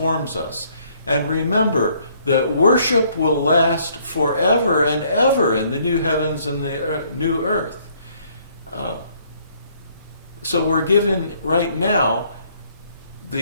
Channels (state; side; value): inverted; both; correlation -0.64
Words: us. And remember that worship will last forever and ever in the new heavens and the new earth. So we're given right now